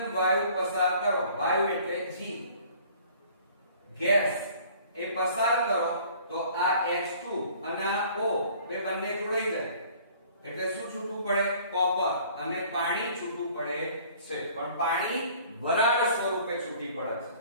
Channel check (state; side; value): inverted; both; correlation -0.53